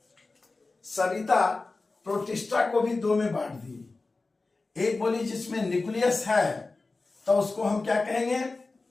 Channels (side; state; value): right; quieter; 3.6 dB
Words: सविता प्रोटिस्टा को भी दो में बांट दी। एक बोली जिसमें न्यूक्लियस है तो उसको हम क्या कहेंगे?